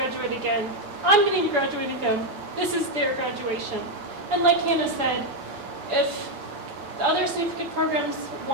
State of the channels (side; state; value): left; late; 7.1 ms